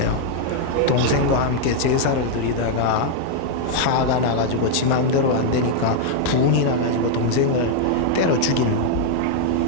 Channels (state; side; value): different; both; correlation 0.00